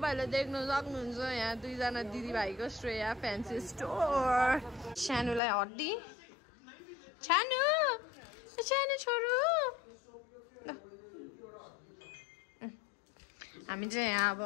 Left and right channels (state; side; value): drops out; right; at 5.4 s